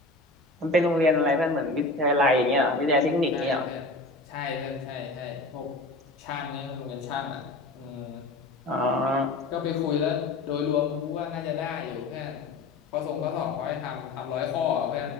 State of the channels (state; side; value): quieter; right; 3.0 dB